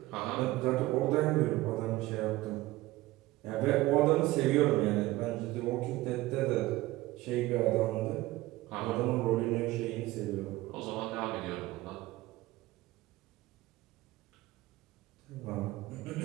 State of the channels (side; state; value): left; quieter; 18.2 dB